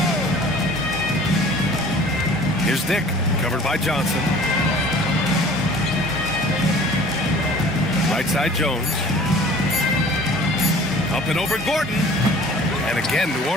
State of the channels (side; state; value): both; normal; correlation 0.48